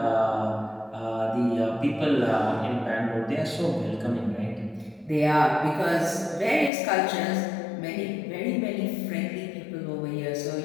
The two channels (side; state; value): right; drops out; at 6.7 s